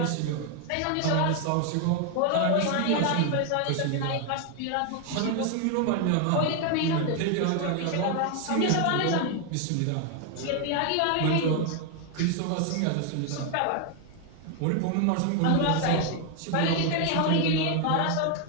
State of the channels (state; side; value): different; both; correlation 0.01